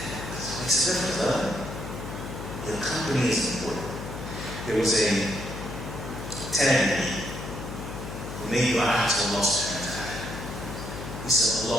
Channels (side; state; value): left; noise; hum, 8 dB below the sound